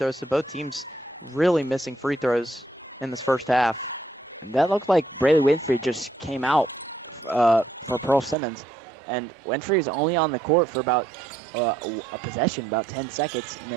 so both teams really missing free throws in this first half. That looked like Braylee Winfrey just came out for Pearl Simmons. And Winfrey is only on the court for about a possession, about 10 seconds, and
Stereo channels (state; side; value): drops out; left; at 8.3 s